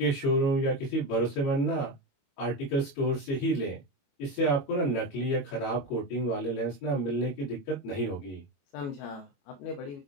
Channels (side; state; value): right; late; 21 ms